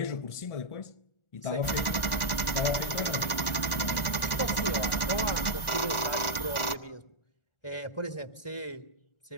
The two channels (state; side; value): late; right; 1.1 ms